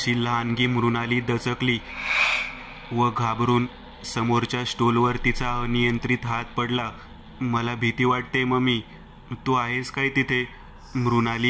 लहानगी मृणाली दचकली व घाबरून समोरच्या स्टूलवर तिचा अनियंत्रित हात पडला. मला भीती वाटते मम्मी, तू आहेस काय तिथे?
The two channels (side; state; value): both; identical; correlation 1.00